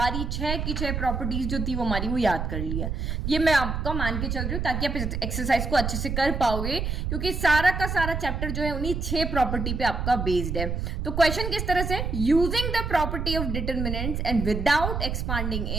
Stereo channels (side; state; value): right; noise; rumble, 2 dB below the sound